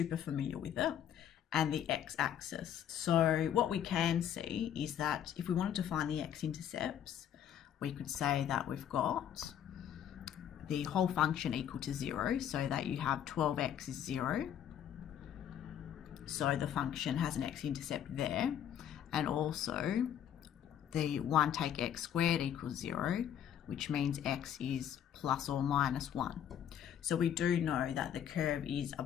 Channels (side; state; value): right; quieter; 9.8 dB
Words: familiar with it, and the x-axis. So what we can see is that if we wanted to find the x-intercepts, we could say that we've got the whole function equal to 0, so that you have 12x is 0. So the function has an x-intercept there, and also the 1 take x squared equals 0, which means x is plus or minus 1. So we do know that the curve is